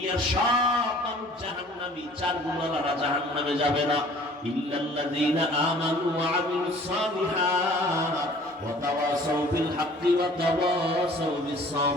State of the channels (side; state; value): both; normal; correlation 0.51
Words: সব মানুষ জাহান্নামী। চার গুণওয়ালারা জাহান্নামে যাবে না। ইল্লাল্লাযীনা আমানু ওয়া আমিলুস সালিহাত ওয়া তাওয়াসাউ বিল হাক্কি ওয়া তাওয়াসাউ বিস